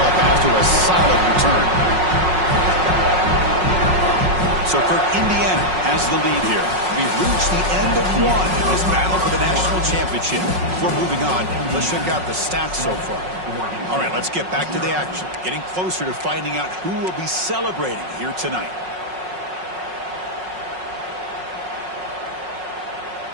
after a solid return. So for Indiana has the lead here. We've reached the end of one in this battle for the national championship. Before moving on, let's check out the stats so far. All right, let's get back to the action. Getting closer to finding out who will be celebrating here tonight.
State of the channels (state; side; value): late; left; 5.5 ms